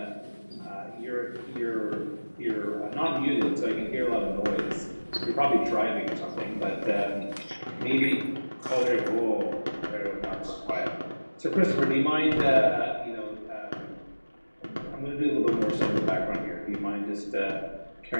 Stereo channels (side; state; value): both; inverted; correlation -1.00